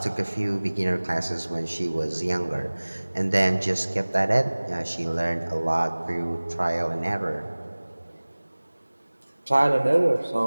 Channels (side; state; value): both; inverted; correlation -1.00